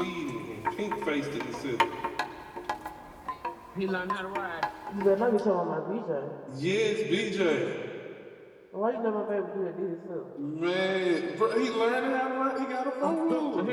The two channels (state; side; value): identical; both; correlation 1.00